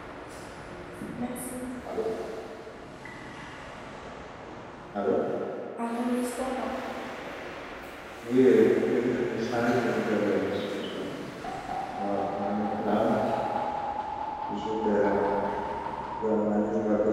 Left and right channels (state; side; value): identical; both; correlation 1.00